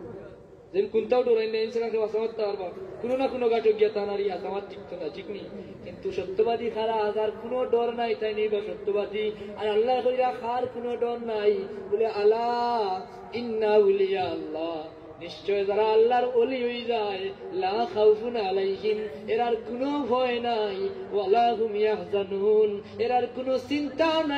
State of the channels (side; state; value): both; identical; correlation 1.00